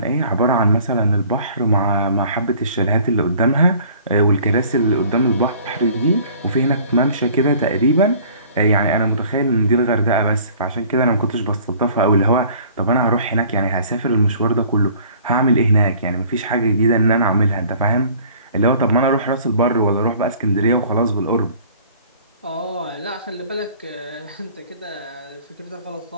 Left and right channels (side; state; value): both; inverted; correlation -0.52